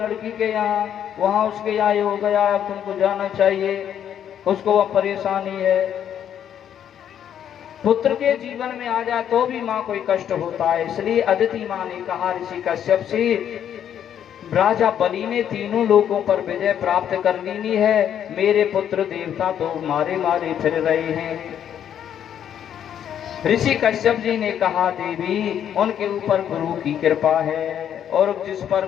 के यहाँ, वहां उसके यहाँ ये हो गया, अब तुमको जाना चाहिए, उसको वह परेशानी है। पुत्र के जीवन में आ जाए तो भी माँ कोई कष्ट होता है। इसलिए अदिति माँ ने कहा ऋषि कश्यप से, राजा बलि ने तीनों लोगों पर विजय प्राप्त कर ली है, मेरे पुत्र देवता तो मारे मारे फिर रहे हैं। ऋषि कश्यप जी ने कहा, देवी उनके ऊपर गुरु की कृपा है, और जिस पर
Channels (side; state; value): right; quieter; 9.5 dB